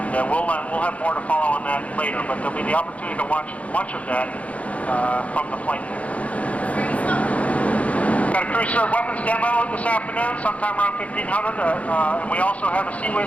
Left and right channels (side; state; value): right; late; 0.066 ms